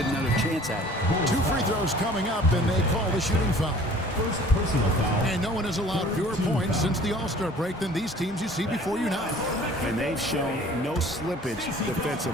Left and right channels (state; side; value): normal; both; correlation 0.50